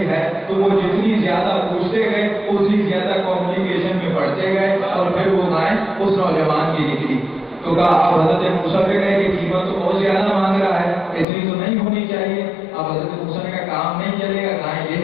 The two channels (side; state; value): right; drops out; at 11.2 s